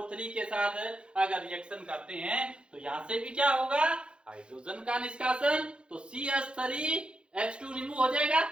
के साथ अगर रिएक्शन करते हैं तो यहां से भी क्या होगा, हाइड्रोजन का निष्कासन। तो CH3H2 रिमूव हो जाएगा,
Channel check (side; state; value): left; late; 0.055 ms